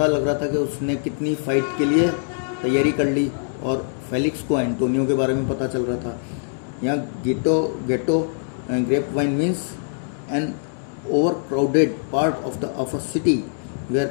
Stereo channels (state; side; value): silent; right; digital silence